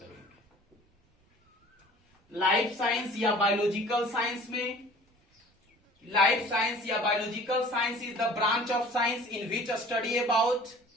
लाइफ साइंस या बायोलॉजिकल साइंस में, लाइफ साइंस या biological science is the branch of science in which a study about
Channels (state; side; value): normal; both; correlation 0.47